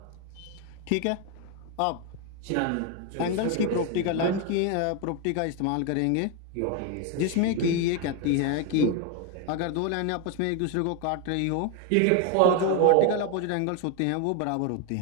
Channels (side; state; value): both; different; correlation 0.01